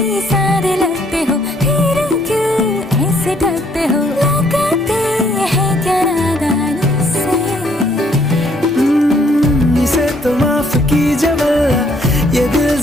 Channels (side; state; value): both; normal; correlation 0.67